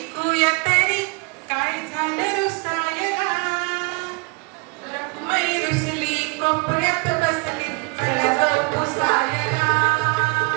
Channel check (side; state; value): left; quieter; 29.0 dB